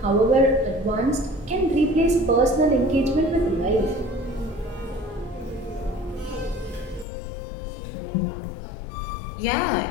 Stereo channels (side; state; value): right; drops out; at 7.1 s